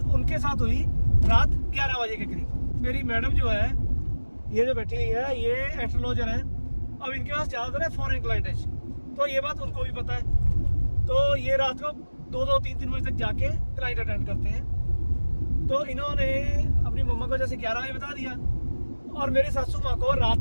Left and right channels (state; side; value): inverted; both; correlation -1.00